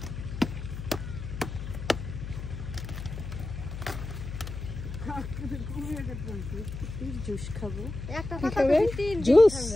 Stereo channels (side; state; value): left; noise; hum, 8 dB below the sound